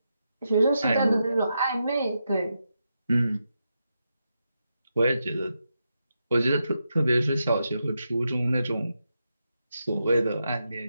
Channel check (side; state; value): both; inverted; correlation -0.86